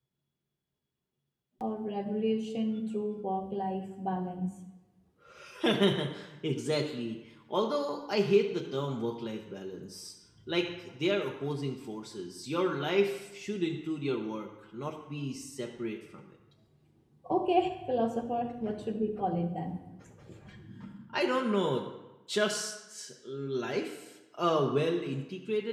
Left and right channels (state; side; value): identical; both; correlation 1.00